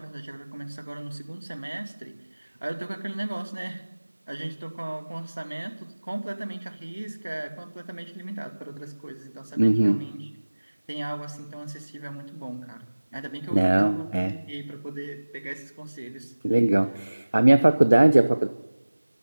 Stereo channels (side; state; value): both; inverted; correlation -1.00